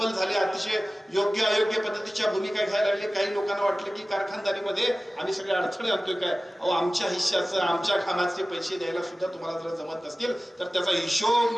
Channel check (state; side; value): normal; both; correlation 0.97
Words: झाले. अतिशय योग्य अयोग्य पद्धतीच्या भूमिका घ्यायला लागले. काही लोकांना वाटलं की कारखानदारीमध्ये आम्ही सगळे अडथळे आणतोय काय. अहो, आमच्या हिश्श्याचं, आमच्या कामाचे पैसे द्यायला सुद्धा तुम्हाला जर जमत नसतील तर त्याचा हिशोब